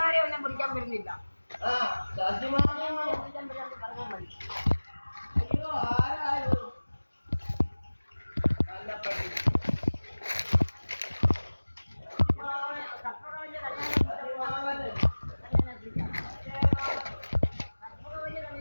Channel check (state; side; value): inverted; both; correlation -1.00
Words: പിടിക്കാൻ വരുന്നില്ല. അയ്യോ ആരായോ നല്ല പട്ടി